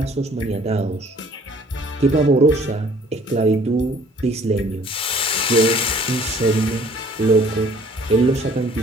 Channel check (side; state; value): both; normal; correlation 0.56